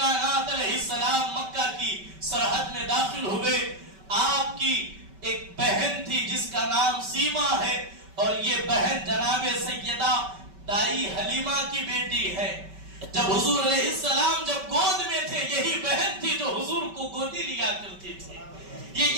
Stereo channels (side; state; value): left; late; 5.2 ms